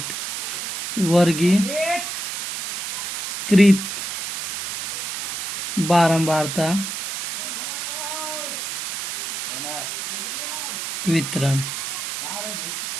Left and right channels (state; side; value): noise; right; hiss, 3 dB below the sound